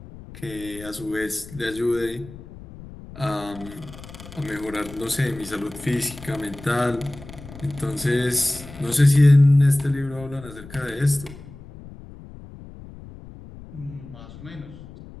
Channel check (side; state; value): left; noise; rumble, 16 dB below the sound